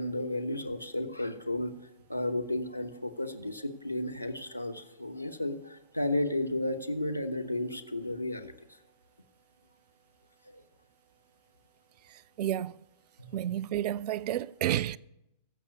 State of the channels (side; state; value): both; inverted; correlation -0.64